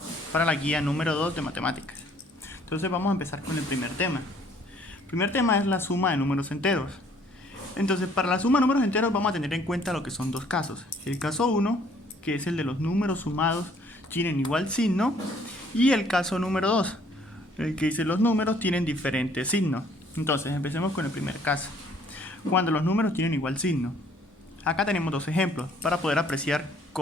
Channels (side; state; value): both; normal; correlation 0.60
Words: para la guía número 2 de matemáticas. Entonces vamos a empezar con el primer tema. El primer tema es la suma de números enteros. Entonces, para la suma de números enteros vamos a tener en cuenta lo que son dos casos. El caso 1, que es el de los números sumados tienen igual signo, y el caso número 2, el que dice los números tienen diferente signo. Entonces, empecemos con el primer caso. Cuando los números tienen igual signo. Acá tenemos dos ejemplos para poder apreciar